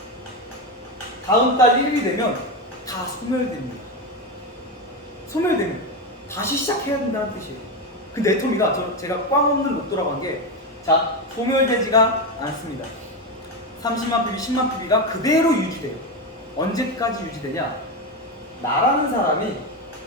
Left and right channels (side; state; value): both; normal; correlation 0.14